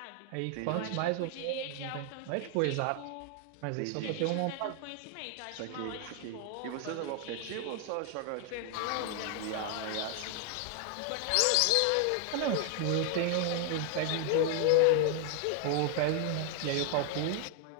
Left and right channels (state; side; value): different; both; correlation 0.00